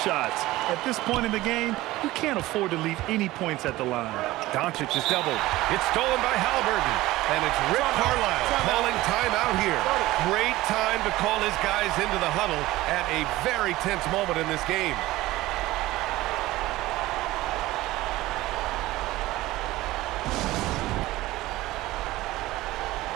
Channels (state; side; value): quieter; left; 17.7 dB